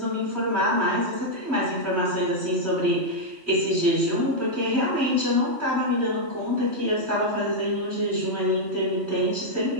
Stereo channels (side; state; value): left; late; 3.1 ms